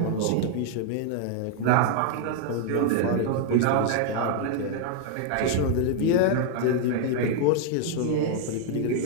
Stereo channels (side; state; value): both; different; correlation 0.00